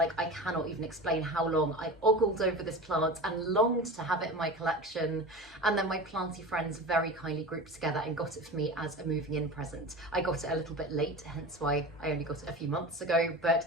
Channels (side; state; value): both; normal; correlation 0.31